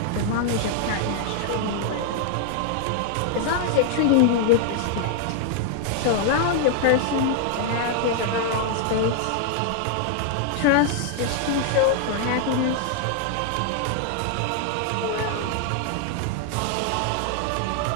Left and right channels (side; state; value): both; different; correlation 0.00